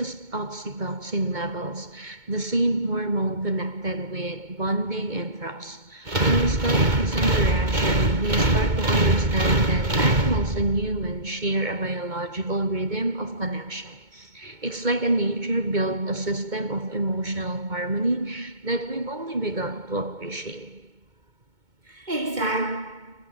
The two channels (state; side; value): late; left; 2.2 ms